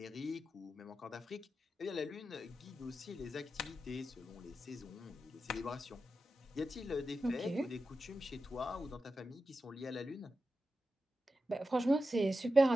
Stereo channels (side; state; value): both; normal; correlation 0.91